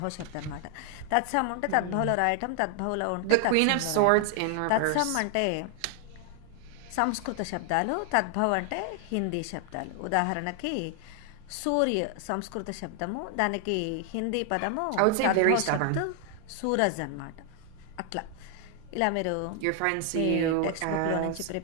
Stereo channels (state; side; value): different; both; correlation 0.00